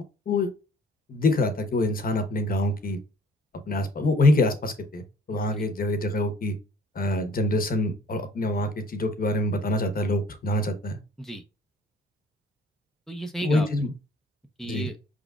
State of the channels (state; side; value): normal; both; correlation 0.55